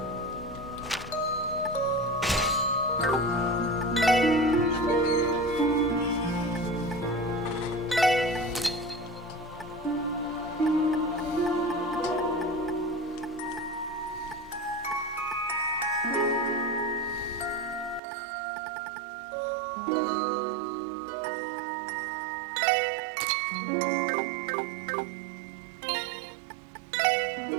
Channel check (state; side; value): drops out; left; at 18.0 s